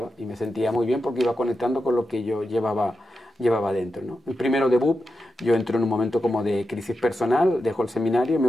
y me sentía muy bien porque iba conectando con lo que yo llevaba dentro, ¿no? El primero de BUP, yo entro en un momento como de crisis personal, dejo el seminario y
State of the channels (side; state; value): both; normal; correlation 0.89